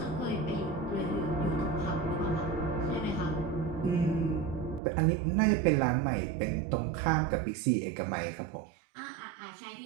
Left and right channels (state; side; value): drops out; left; at 4.8 s